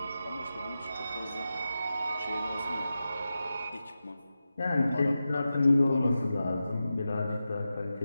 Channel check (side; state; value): both; inverted; correlation -0.92